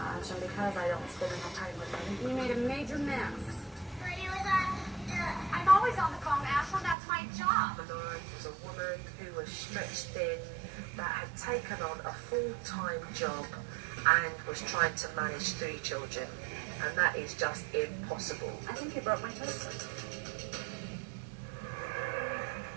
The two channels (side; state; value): left; drops out; at 7.0 s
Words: and because I don't spend enough time with them. You made a major mess. I'm always on the phone, Ashley. That's my job. Malora was a woman who was stretched thin, that had taken on a full-time job and was trying to manage 3 children, and that is just impossible. I think you broke my toaster.